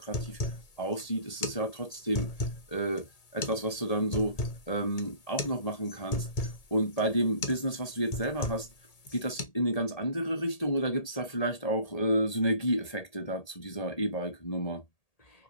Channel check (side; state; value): right; late; 1.8 ms